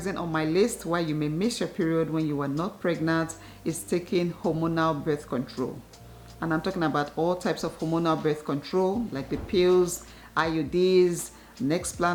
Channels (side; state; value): both; identical; correlation 1.00